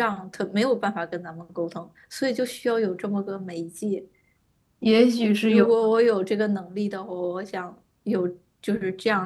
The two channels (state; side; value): identical; both; correlation 1.00